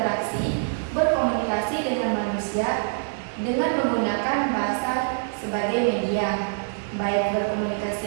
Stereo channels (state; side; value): silent; left; digital silence